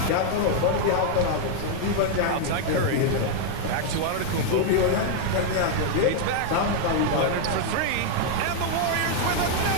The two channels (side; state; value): both; different; correlation 0.00